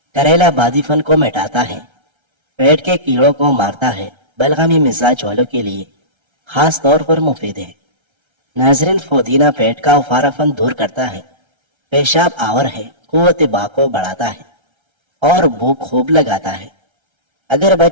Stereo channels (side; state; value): left; late; 1.3 ms